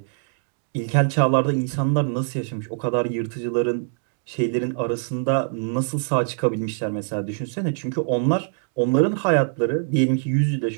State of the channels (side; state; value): left; silent; 58 dB below the other